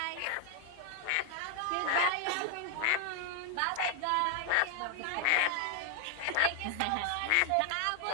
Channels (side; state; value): both; different; correlation 0.00